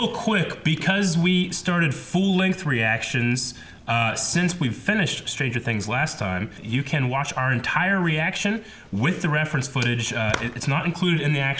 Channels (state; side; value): identical; both; correlation 1.00